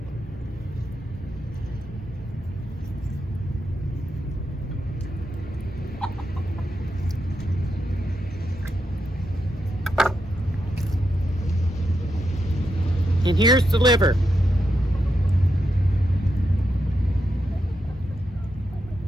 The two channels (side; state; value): both; normal; correlation 0.84